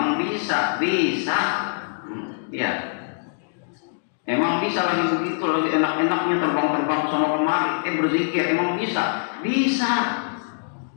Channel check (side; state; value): right; silent; digital silence